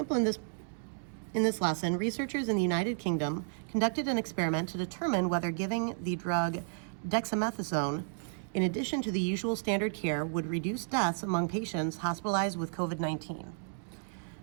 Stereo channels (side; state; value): left; silent; digital silence